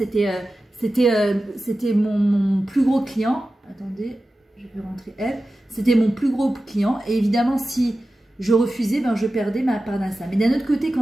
mon plus gros client. Attendez, je vais rentrer elle. C'était mon plus gros client. Et évidemment, si je refusais, je perdais ma parnassa. Mais d'un autre côté,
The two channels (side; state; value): both; normal; correlation 0.94